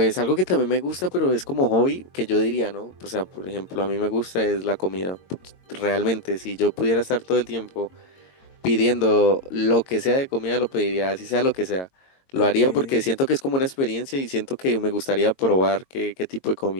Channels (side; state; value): right; late; 22 ms